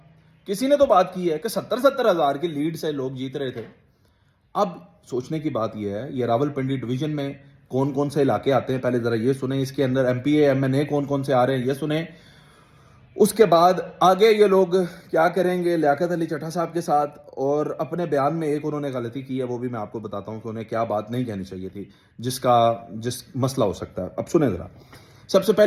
किसी ने तो बात की है कि 70-70 हज़ार की लीड से लोग जीत रहे थे। अब सोचने की बात यह है, ये रावलपिंडी डिवीजन में कौन कौन से इलाके आते हैं पहले जरा ये सुने। इसके अंदर एमपीए एमएनए कौन कौन से आ रहे हैं ये सुने। उसके बाद आगे ये लोग क्या करेंगे लियाकत अली चट्ठा साहब के साथ। और अपने बयान में एक उन्होंने गलती की है, वो भी मैं आपको बताता हूँ कि उन्हें क्या बात नहीं कहनी चाहिए थी, जिस मसला हो सकता है। अब सुने जरा। सबसे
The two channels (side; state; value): both; identical; correlation 1.00